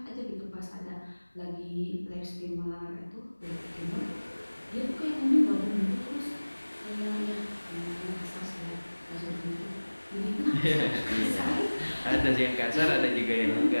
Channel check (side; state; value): both; inverted; correlation -1.00